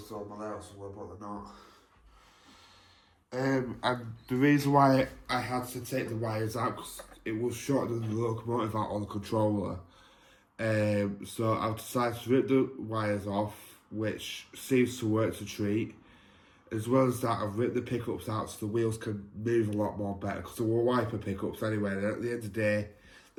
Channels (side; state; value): both; identical; correlation 1.00